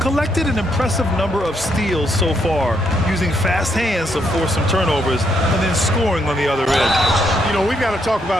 collected an impressive number of steals so far, using fast hands to force some turnovers and then scoring on the other end. You know, we've got to talk about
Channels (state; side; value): normal; both; correlation 0.75